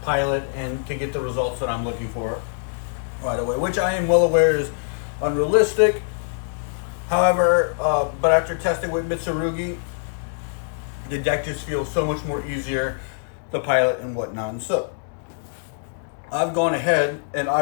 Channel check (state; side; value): silent; right; 63 dB below the other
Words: pilot and to get the results that I'm looking for right away, which I am well aware is unrealistic. However, but after testing with Mitsurugi, the deck just feels so much more easier to pilot and whatnot. And so I've gone ahead and